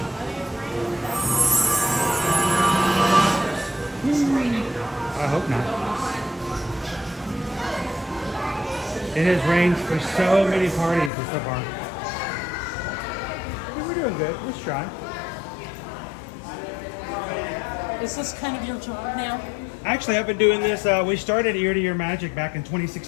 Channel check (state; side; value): drops out; right; at 11.1 s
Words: I hope not. It has rained for so many parties so far. We're doing good. Let's try. Is this kind of your job now? Actually, I've been doing this. We started Ear to Ear Magic back in